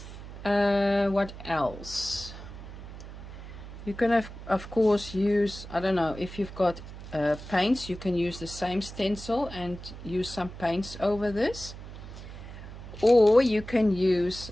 What else? You can have, of course, use, I don't know, if you've got paints, you can use the same stencil and use some paints over this, or you can use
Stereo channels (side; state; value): right; noise; hum, 13 dB below the sound